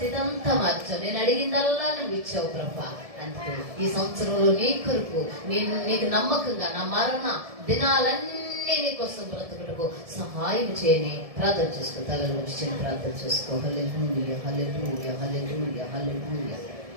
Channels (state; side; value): late; left; 1.7 ms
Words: అంతా మార్చావు. నేను అడిగిందల్లా నువ్వు ఇచ్చావు ప్రభా. అందుకే ఈ సంవత్సరంలో నీ కొరకు నీకు నమ్మకంగా నా మరణ దినాలన్నీ నీకోసం బ్రతుకుటకు సహాయం చేయని ప్రార్థన చేసుకో. తలలో వచ్చి ప్రార్థన చేసుకో. హల్లెలూయా, హల్లెలూయా, హల్లెలూయా, హల్లెలూయా,